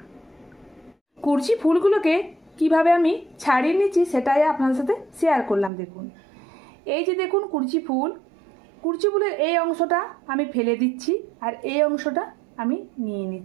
কুরচি ফুলগুলোকে কিভাবে আমি ছাড়িয়ে নিচ্ছি সেটাই আপনাদের সাথে শেয়ার করলাম। দেখুন, এই যে দেখুন কুরচি ফুলের এই অংশটা আমি ফেলে দিচ্ছি আর এই অংশটা আমি নিয়ে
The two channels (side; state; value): left; drops out; at 5.7 s